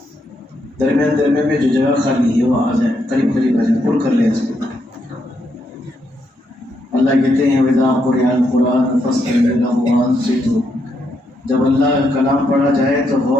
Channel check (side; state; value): both; normal; correlation 0.79